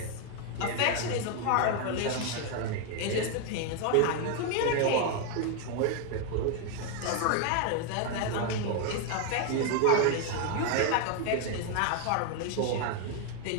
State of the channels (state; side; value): different; both; correlation 0.01